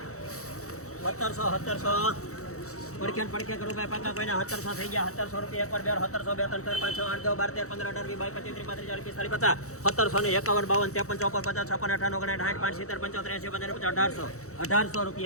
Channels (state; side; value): late; right; 0.65 ms